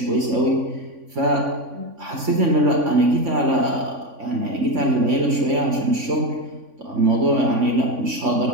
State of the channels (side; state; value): left; late; 3.5 ms